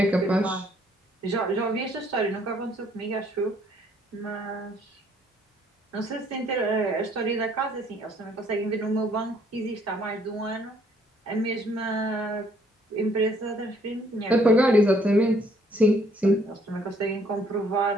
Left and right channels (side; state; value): both; normal; correlation 0.64